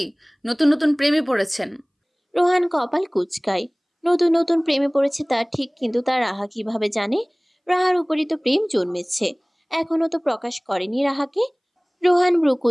নতুন নতুন প্রেমে পড়েছেন? রোহান কপাল কুচকায়। নতুন নতুন প্রেমে পড়েছে তার ঠিক, কিন্তু তার রাহা কিভাবে জানে? রাহার উপরই তো প্রেম জন্মেছে, এখনো তো প্রকাশ করেনি রাহাকে। রোহান ভ্রু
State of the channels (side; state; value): both; identical; correlation 1.00